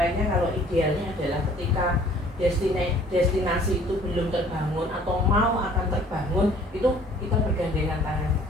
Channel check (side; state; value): both; normal; correlation 0.54